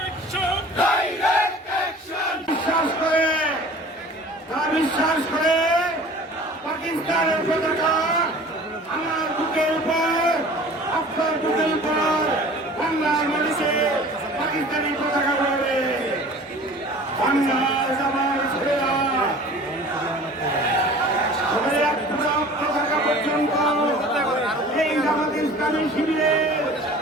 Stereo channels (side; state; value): both; normal; correlation 0.44